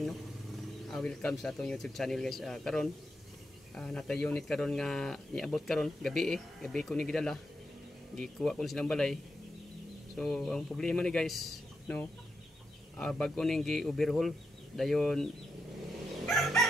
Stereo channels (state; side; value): normal; both; correlation 0.85